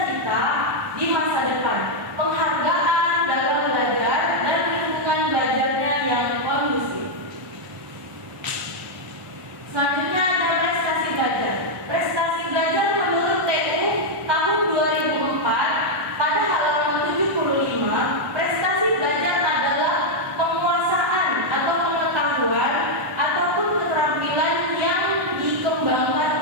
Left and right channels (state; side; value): late; left; 1.1 ms